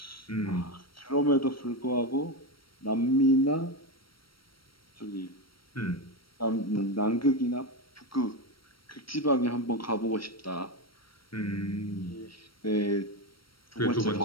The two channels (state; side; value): late; right; 0.74 ms